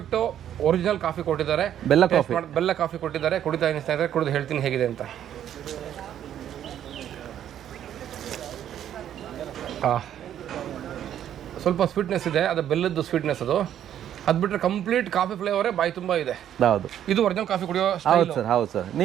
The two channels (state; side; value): quieter; left; 10.5 dB